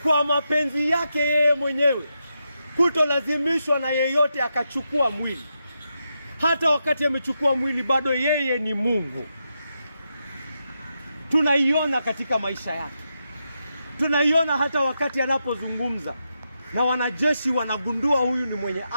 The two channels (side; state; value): both; inverted; correlation -0.85